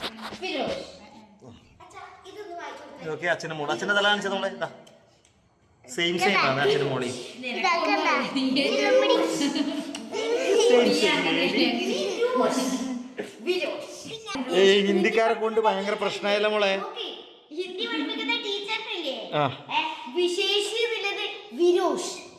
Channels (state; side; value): identical; both; correlation 1.00